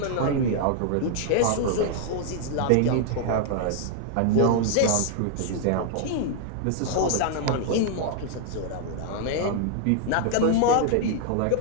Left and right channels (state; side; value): different; both; correlation 0.00